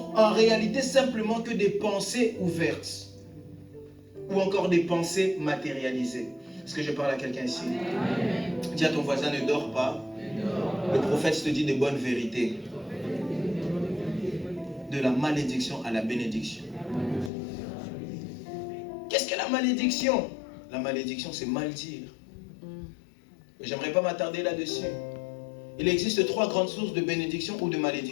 en réalité simplement que des pensées ouvertes. ou encore des pensées matérialisées. Est-ce que je parle à quelqu'un ici? Amen. Dis à ton voisin, ne dors pas. Le prophète te dit de bonnes vérités. De la malédiction à la bénédiction. Qu'est-ce que la malédiction? La malédiction, c'est mal dire. J'aimerais pas m'attarder là-dessus. Il existe 3 grandes sources de bénédiction ou de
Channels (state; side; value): drops out; right; at 17.3 s